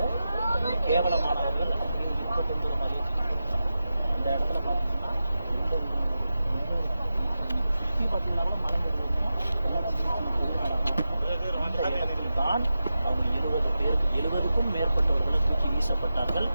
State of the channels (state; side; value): inverted; both; correlation -0.92